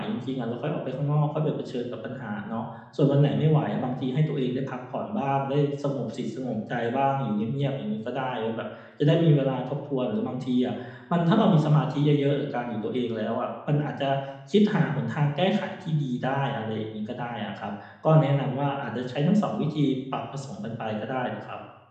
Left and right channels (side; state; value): both; identical; correlation 1.00